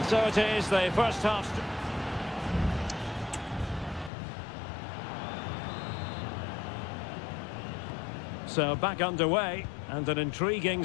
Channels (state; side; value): drops out; right; at 4.1 s